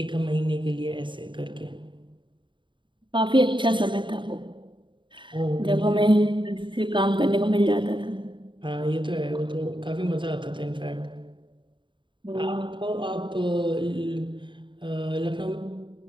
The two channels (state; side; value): late; left; 0.23 ms